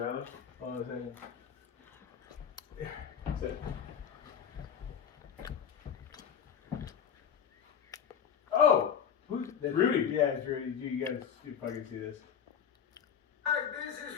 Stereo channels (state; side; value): quieter; right; 8.0 dB